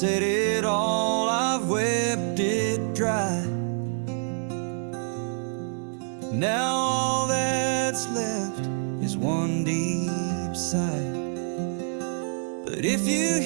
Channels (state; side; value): silent; left; digital silence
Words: it all, I've wept it dry. Now all that's left is one deep sigh. But if you